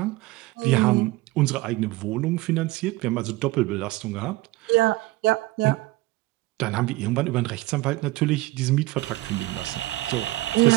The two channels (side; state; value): left; quieter; 19.2 dB